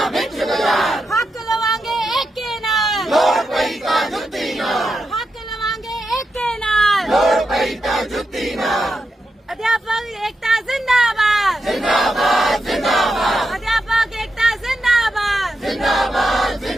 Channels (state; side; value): normal; both; correlation 0.87